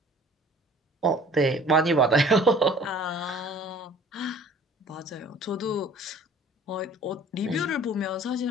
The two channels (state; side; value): normal; both; correlation 0.50